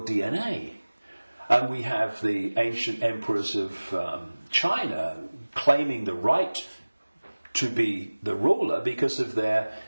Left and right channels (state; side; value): inverted; both; correlation -1.00